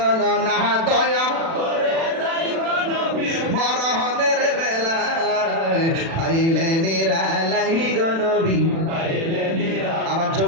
না, দয়া করে তাই গো নবী মরণের বেলায়, পাইলে নিরালাই গো নবী, পাইলে নিরালাই। আমার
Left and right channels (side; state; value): left; late; 36 ms